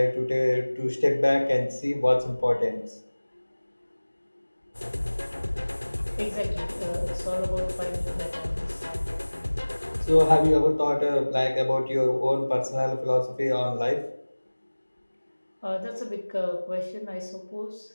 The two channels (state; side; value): inverted; both; correlation -1.00